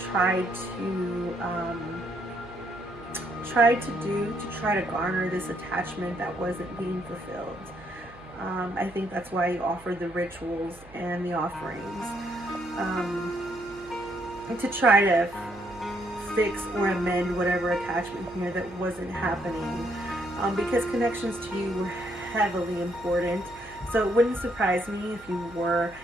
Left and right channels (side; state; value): right; noise; hum, 22 dB below the sound